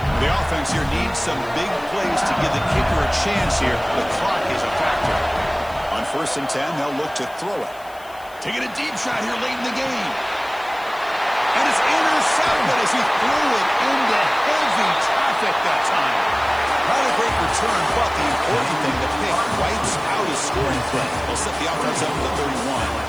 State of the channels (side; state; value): left; noise; hiss, 24 dB below the sound